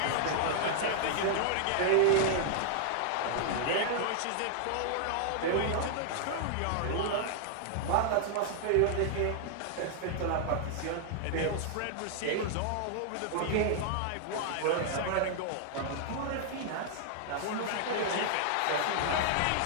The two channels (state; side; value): different; both; correlation -0.01